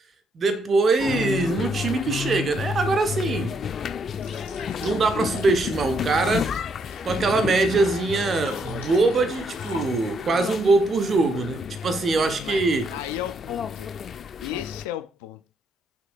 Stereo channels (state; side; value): normal; both; correlation 0.74